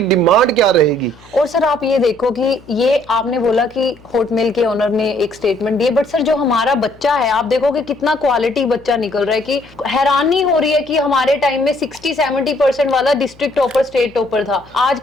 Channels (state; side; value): noise; left; hum, 26 dB below the sound